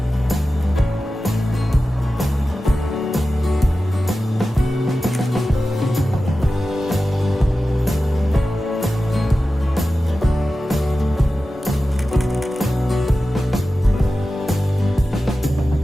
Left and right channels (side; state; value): both; normal; correlation 0.94